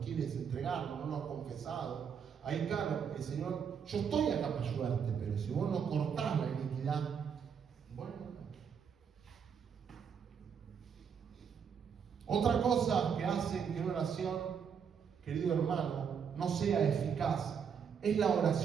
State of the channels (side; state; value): left; quieter; 7.1 dB